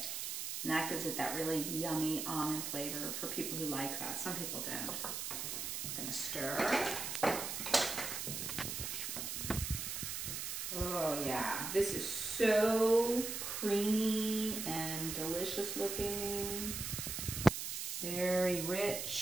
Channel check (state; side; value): noise; right; hiss, 4 dB below the sound